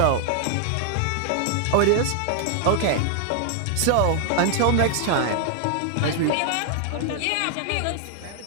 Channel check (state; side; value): different; both; correlation 0.00